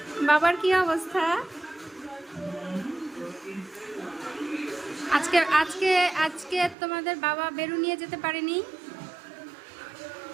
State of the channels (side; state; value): left; drops out; at 6.8 s